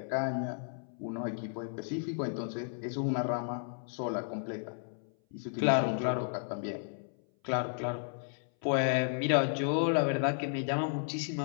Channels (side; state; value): right; silent; 56 dB below the other